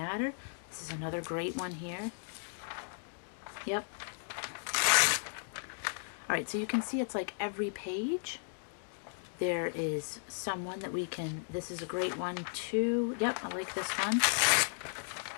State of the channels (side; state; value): right; silent; digital silence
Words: This is another great one here. Yep. All right, so you can see it's like every page there is someone that we can, this is a great one too. Yep, I like this one.